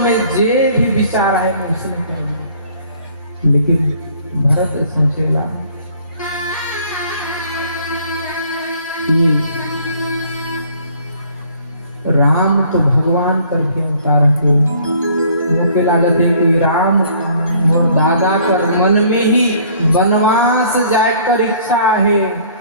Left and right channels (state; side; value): inverted; both; correlation -0.57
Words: जे भी विचार है मैं उसने कहा। लेकिन भरत सोचेला कि राम तो भगवान करके अवतार के मुझे लागत है कि राम और दादा कर मन में ही वनवास जाकर इच्छा है